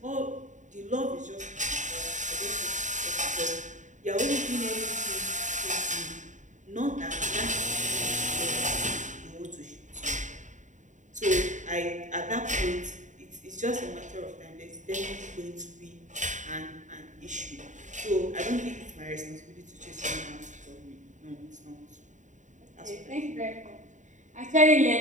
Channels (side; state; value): left; late; 0.36 ms